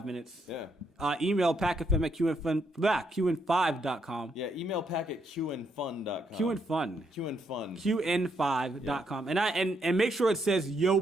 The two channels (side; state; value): both; normal; correlation 0.76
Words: minutes, email packfm at qn5.com. Yeah, email pack at qnfun.com. qnfun. qnfun. qn5.com. And make sure it says yo